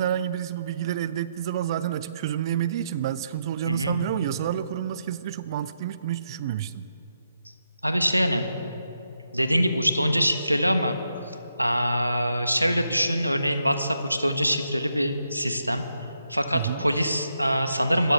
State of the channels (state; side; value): inverted; both; correlation -0.80